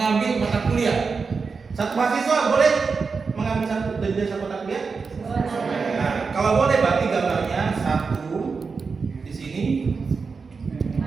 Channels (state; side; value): quieter; left; 4.9 dB